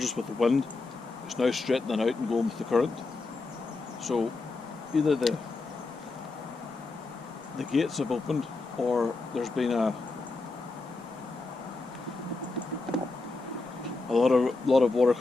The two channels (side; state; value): right; quieter; 3.5 dB